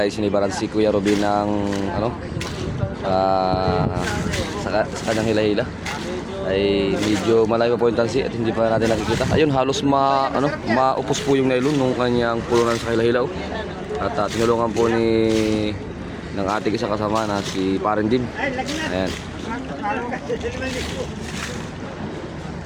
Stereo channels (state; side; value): identical; both; correlation 1.00